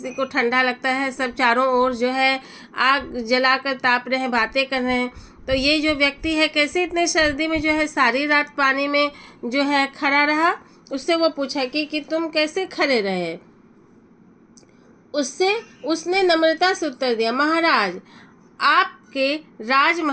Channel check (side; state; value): both; identical; correlation 1.00